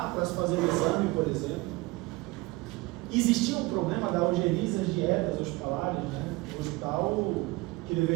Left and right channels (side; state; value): left; quieter; 22.2 dB